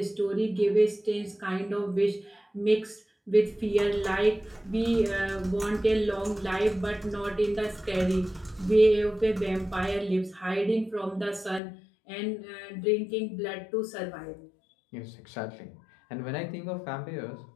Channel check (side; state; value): right; drops out; at 11.6 s